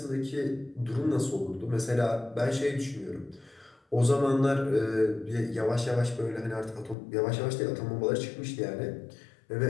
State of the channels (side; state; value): right; drops out; at 7.0 s